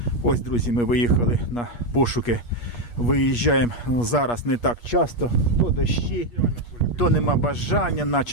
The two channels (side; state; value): right; late; 8.4 ms